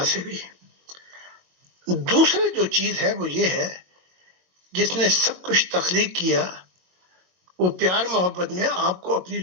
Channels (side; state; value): left; late; 22 ms